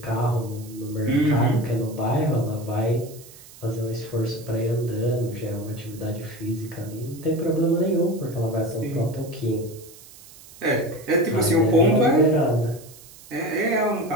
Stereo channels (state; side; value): noise; right; hiss, 20 dB below the sound